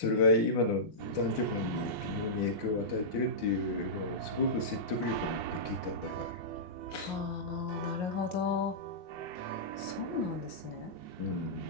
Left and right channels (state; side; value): late; right; 5.6 ms